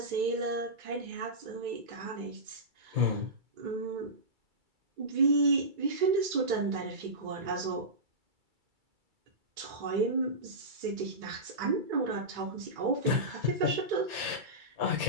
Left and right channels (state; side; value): late; left; 2.3 ms